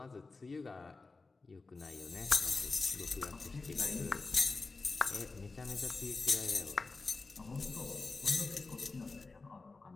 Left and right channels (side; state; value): right; quieter; 3.9 dB